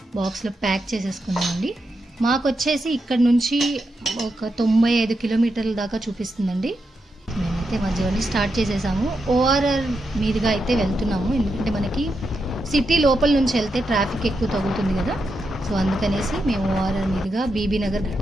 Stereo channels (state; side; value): normal; both; correlation 0.85